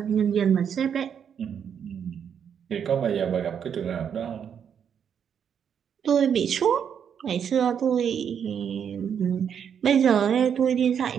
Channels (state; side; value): quieter; left; 7.9 dB